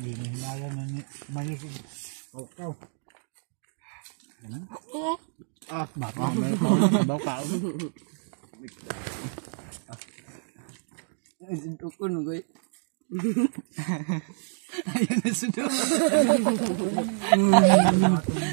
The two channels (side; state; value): left; silent; 60 dB below the other